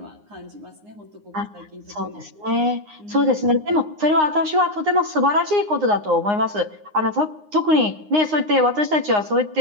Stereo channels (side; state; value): left; late; 9.7 ms